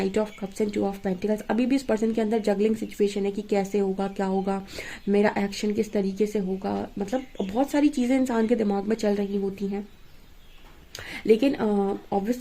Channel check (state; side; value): identical; both; correlation 1.00